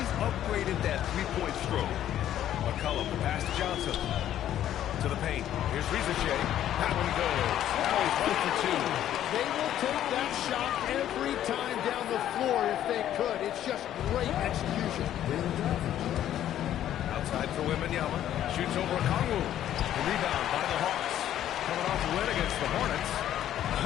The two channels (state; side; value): quieter; right; 11.5 dB